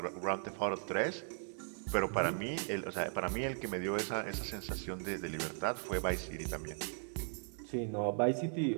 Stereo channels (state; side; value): silent; left; 53 dB below the other